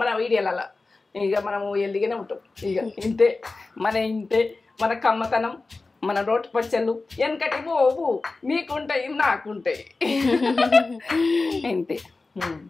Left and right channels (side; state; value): right; quieter; 3.6 dB